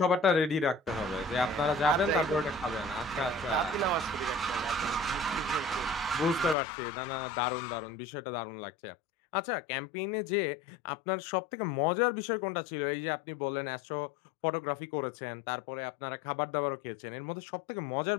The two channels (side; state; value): right; drops out; at 6.6 s